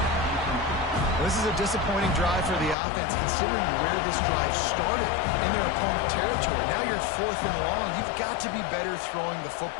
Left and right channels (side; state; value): right; drops out; at 2.8 s